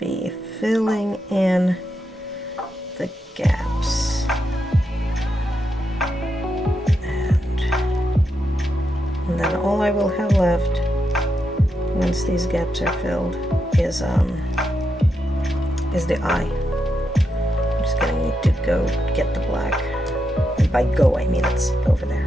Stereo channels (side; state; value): both; normal; correlation 0.84